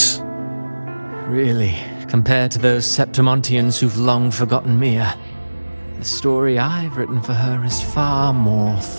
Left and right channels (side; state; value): both; inverted; correlation -1.00